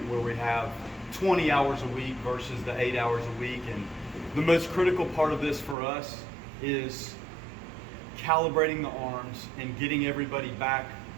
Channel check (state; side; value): drops out; left; at 5.8 s